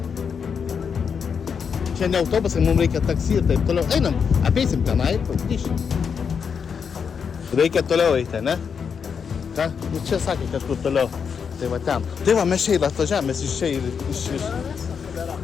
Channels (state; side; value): quieter; right; 6.5 dB